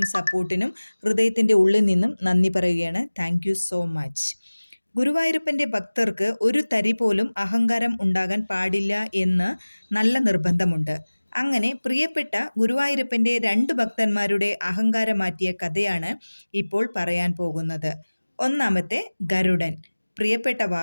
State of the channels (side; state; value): both; inverted; correlation -1.00